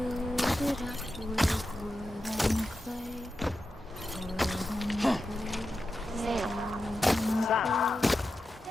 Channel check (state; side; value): normal; both; correlation 0.91